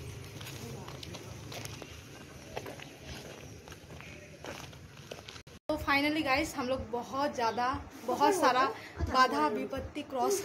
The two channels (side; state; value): both; identical; correlation 1.00